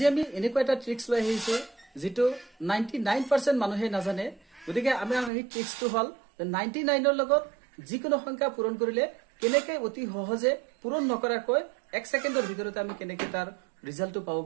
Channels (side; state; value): left; drops out; at 5.3 s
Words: আমি এনেকুৱা এটা ট্ৰিক্স লৈ আহিছো যেটো 99% মানুহে নাজানে গতিকে আমি এই ট্ৰিক্সটো হল 99 ৰ লগত যিকোনো সংখ্যা পূৰণ কৰিলে কেনেকৈ অতি সহজে পূৰণ নকৰাকৈ 1 সেকেন্ডৰ ভিতৰতে আমি কেনেকৈ তাৰ ৰিজাল্টটো পাব